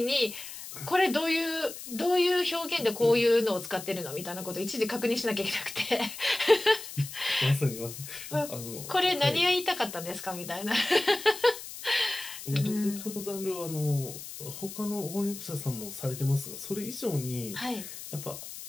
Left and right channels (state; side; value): noise; left; hiss, 11 dB below the sound